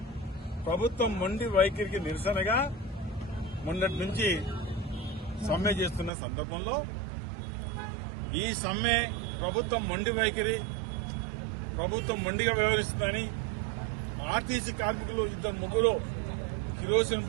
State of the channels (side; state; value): left; drops out; at 6.1 s